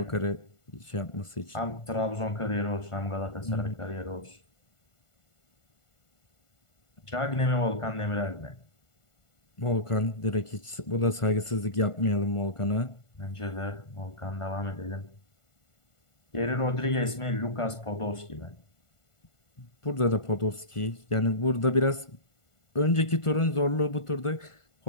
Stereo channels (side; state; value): right; late; 1.5 ms